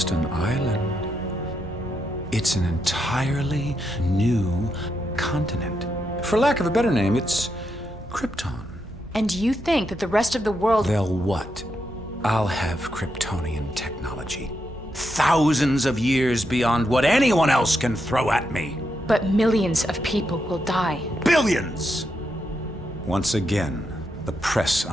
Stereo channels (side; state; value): both; normal; correlation 0.82